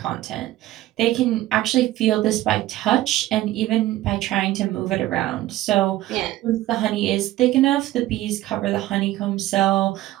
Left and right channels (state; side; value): quieter; left; 15.5 dB